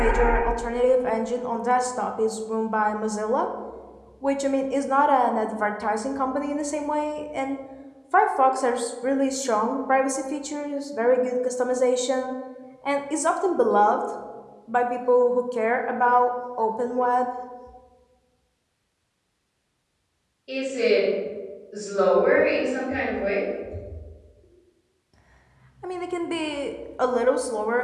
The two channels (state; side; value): identical; both; correlation 1.00